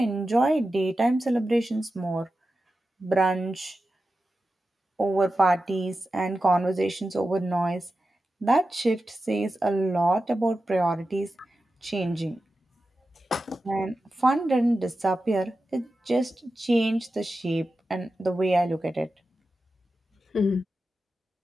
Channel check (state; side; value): normal; both; correlation 0.92